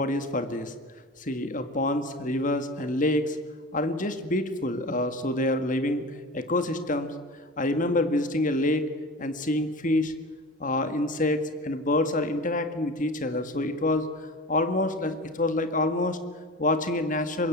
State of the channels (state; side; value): normal; both; correlation 0.33